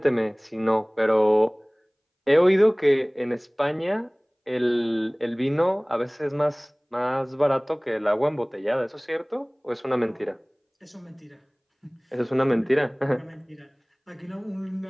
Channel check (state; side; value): identical; both; correlation 1.00